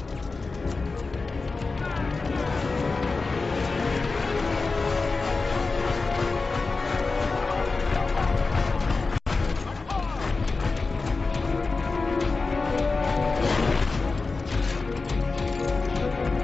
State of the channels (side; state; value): right; quieter; 4.0 dB